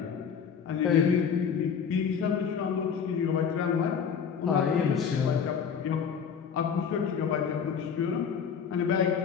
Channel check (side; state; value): right; quieter; 6.9 dB